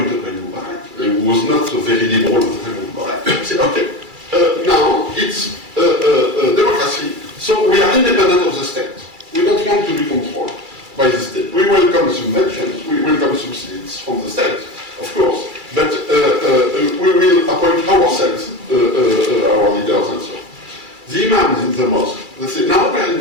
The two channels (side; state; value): left; late; 2.3 ms